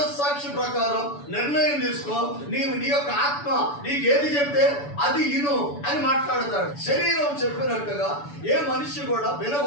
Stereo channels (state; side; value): late; right; 6.9 ms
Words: ప్రకారం నిర్ణయం తీసుకో, నీ యొక్క ఆత్మ నీకు ఏది చెప్తే అది ఇను అని మాట్లాడతాడు. శరీరం చెప్పినట్టుగా ఏ మనిషి కూడా